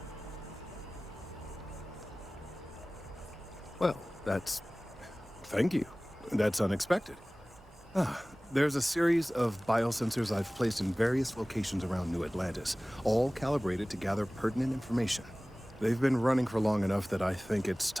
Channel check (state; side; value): normal; both; correlation 0.98